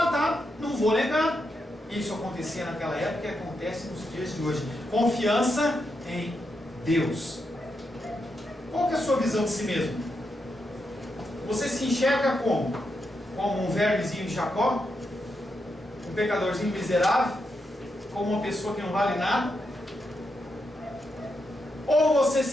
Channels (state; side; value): normal; both; correlation 0.84